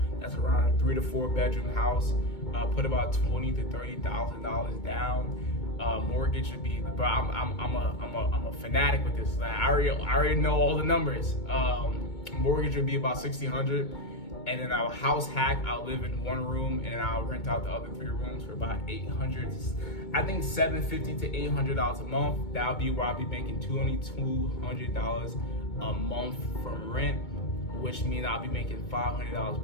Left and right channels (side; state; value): right; late; 2.2 ms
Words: That's around a 3 to 4 bedroom house. Put about $20,000 to $30,000 down. Mortgage should be, but I'm a fanatic with this. I already know all the numbers. Mortgage would be about $1,600, and then I'll house hack. I'll live in one room, and I'll rent out the other 3 rooms for about $800. I think $750 to $800 a month. That'll be where I'll be making $200 a month from rent, which means I'll be making $500